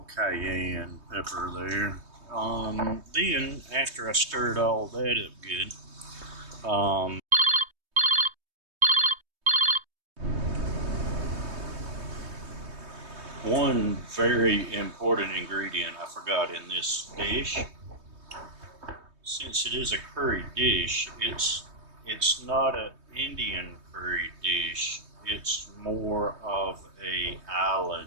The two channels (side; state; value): left; late; 3.2 ms